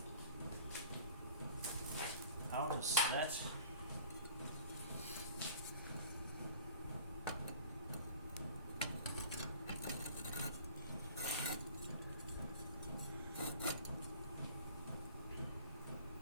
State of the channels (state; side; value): inverted; both; correlation -0.46